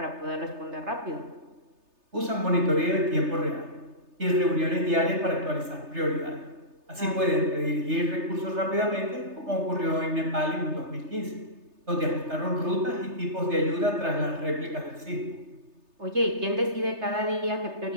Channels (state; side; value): late; left; 3.3 ms